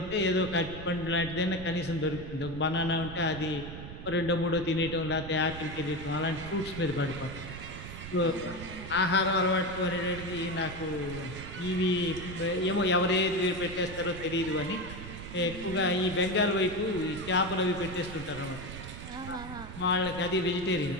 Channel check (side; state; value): right; noise; rumble, 11 dB below the sound